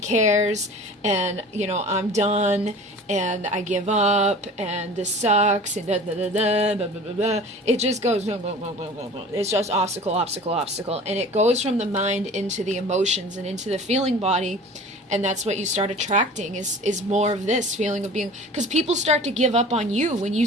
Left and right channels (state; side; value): normal; both; correlation 0.41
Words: and, I'm done and I give up and this sucks and blah, blah, blah, blah, it just goes, blah, blah, blah, blah, blah. It's just obstacle, obstacle, obstacle. And it goes from the mind into the emotions and into the feeling body. And that's what you start attracting is more of this feeling of being, because people start to give up on you when you